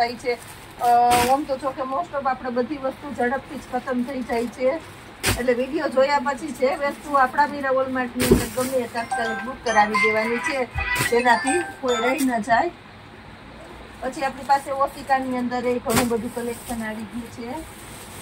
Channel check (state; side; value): identical; both; correlation 1.00